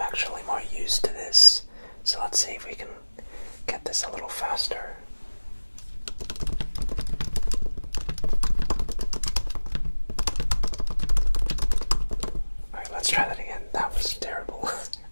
actually more used to this. So let's see if we can get this a little faster. Alright, let's try that again. That was terrible.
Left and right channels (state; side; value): inverted; both; correlation -1.00